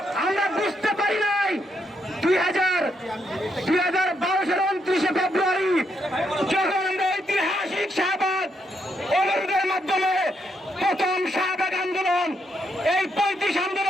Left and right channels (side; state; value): both; normal; correlation 0.78